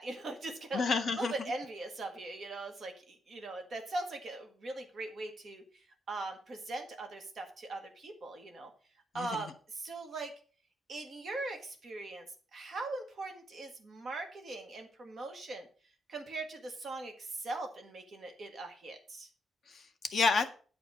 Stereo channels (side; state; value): both; normal; correlation 0.77